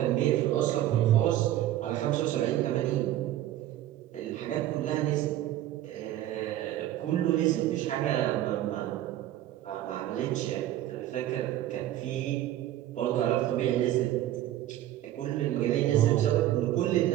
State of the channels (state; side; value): quieter; left; 13.3 dB